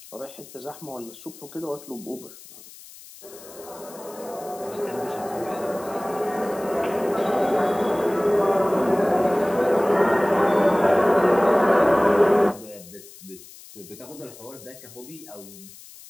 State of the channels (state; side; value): noise; left; hiss, 19 dB below the sound